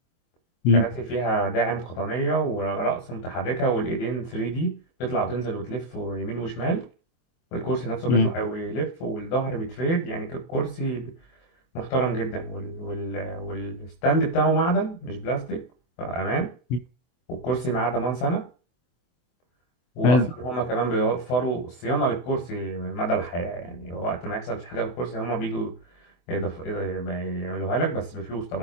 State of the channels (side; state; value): right; late; 24 ms